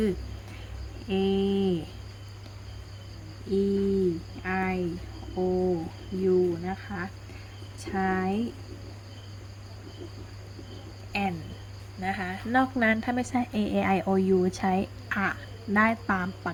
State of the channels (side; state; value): both; identical; correlation 1.00